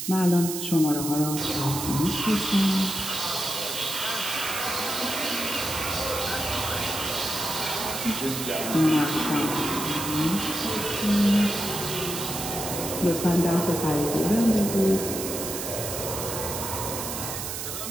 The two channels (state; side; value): noise; right; hiss, 5 dB below the sound